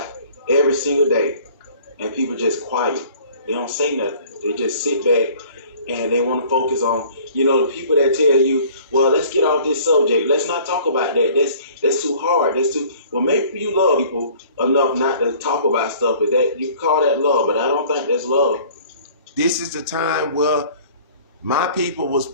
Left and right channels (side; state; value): both; inverted; correlation -0.51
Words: every single day, and people just quiet. They don't say nothing. They just sit back and they want to focus on, the people that tell you, well, let's get off this subject. Let's not talk about that. That's too hard. Well, maybe you love people enough not to talk about stuff, but that you call that love, but I don't think that's love. This is the time where my people was